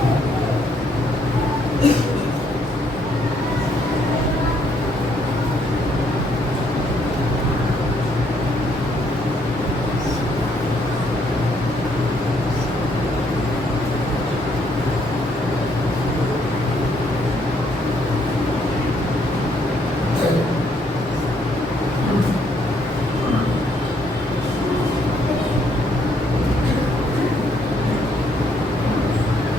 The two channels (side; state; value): both; normal; correlation 0.70